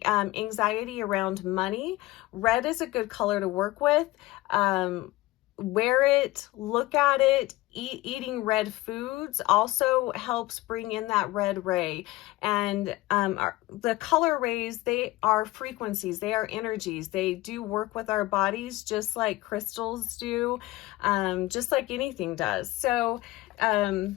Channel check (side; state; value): right; quieter; 18.5 dB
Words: anxiety around money, red is a good color to work with. Wear it, look at it. Eating red foods also helps bring in that red ray. And the color rays, they are frequencies, they are energies. They do work with our bodies just like crystals do, just like anything does. So